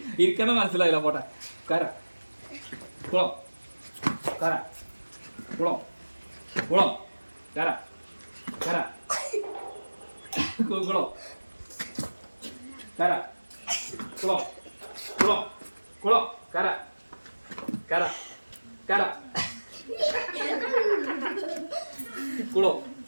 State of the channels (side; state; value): both; inverted; correlation -1.00